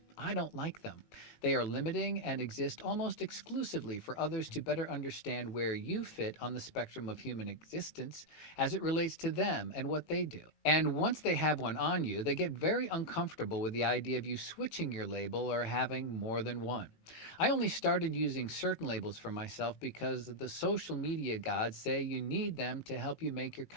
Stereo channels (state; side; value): late; right; 19 ms